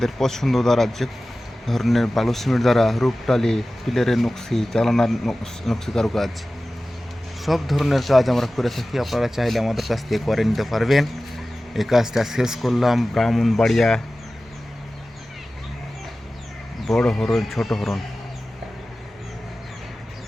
পছন্দ দ্বারা যে ধরনের বালু সিমেন্ট দ্বারা রূপটালি পিলারের নকশি চালানার নকশি কারুকাজ সব ধরনের কাজ আমরা করে থাকি। আপনারা চাইলে আমাদের কাছ থেকে করে নিতে পারবেন। এই কাজটা শেষ করলাম ব্রাহ্মণবাড়িয়া বড় হরণ ছোট হরণ।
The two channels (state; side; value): normal; both; correlation 0.96